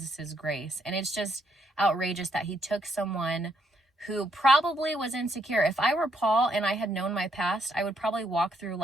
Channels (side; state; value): both; normal; correlation 0.73